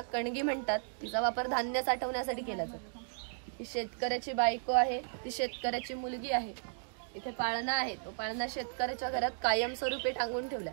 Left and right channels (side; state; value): left; silent; digital silence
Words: कणगी म्हणतात. तिचा वापर धान्य साठवण्यासाठी केला जातो. ही शेतकऱ्याची बायको आहे. ती शेतकऱ्याची मुलगी आहे. इथे पाळणा आहे. तो पाळणा शेतकऱ्याच्या घरात कायमस्वरूपी टांगून ठेवला,